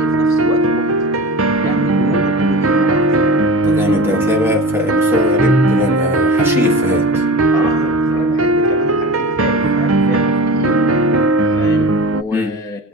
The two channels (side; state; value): both; normal; correlation 0.33